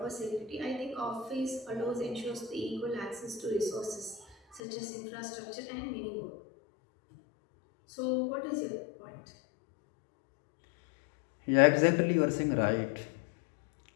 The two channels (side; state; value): right; drops out; at 4.6 s